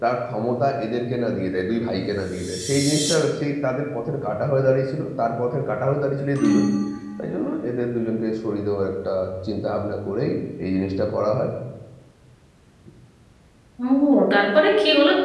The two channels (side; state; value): both; identical; correlation 1.00